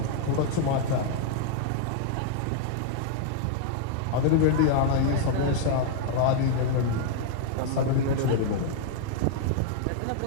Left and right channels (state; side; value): different; both; correlation -0.01